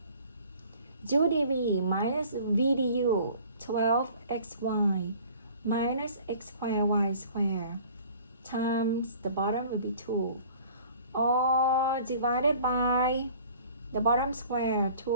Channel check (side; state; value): both; inverted; correlation -0.50